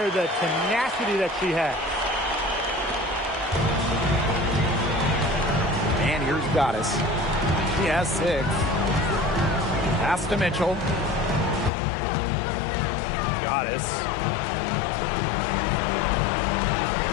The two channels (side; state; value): right; drops out; at 11.7 s